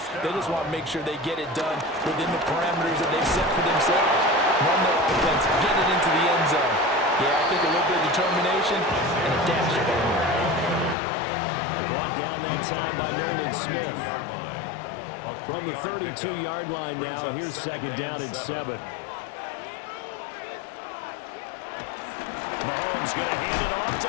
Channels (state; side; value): drops out; right; at 11.0 s